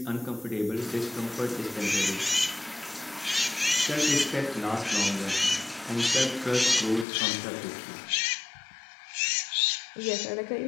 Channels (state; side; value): drops out; right; at 7.1 s